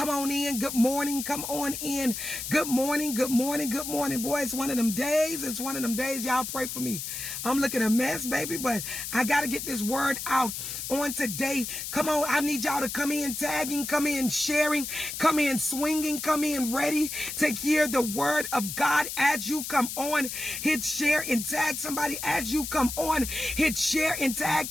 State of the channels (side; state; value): left; noise; hiss, 6 dB below the sound